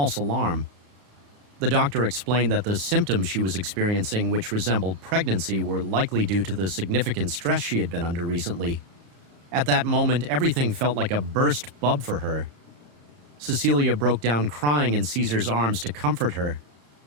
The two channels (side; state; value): left; late; 35 ms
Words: alarm. The doctor explained that the symptoms she was experiencing, which resembled pregnancy, were likely due to the significant stress she had been under recently. At that moment, everything felt like a burst bub for her. Cecilia broke down crying in Caesar's arms to comfort her.